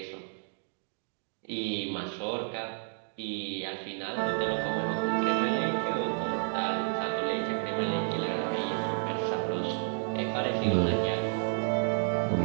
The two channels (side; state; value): left; silent; 56 dB below the other